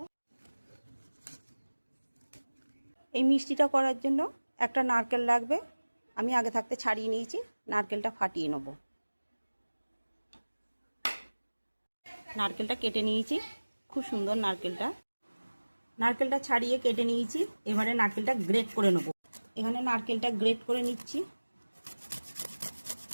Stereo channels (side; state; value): both; inverted; correlation -1.00